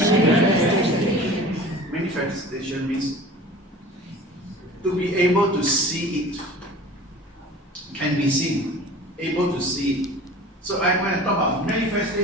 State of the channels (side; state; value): both; normal; correlation 0.41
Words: Manifestation means to be able to see it. Can be seen. Able to see it. So when I talk about